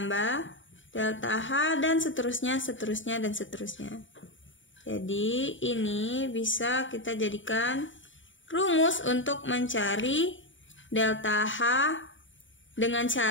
delta H dan seterusnya. Jadi ini bisa kita jadikan rumus untuk mencari delta H dengan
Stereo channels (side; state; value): right; late; 0.56 ms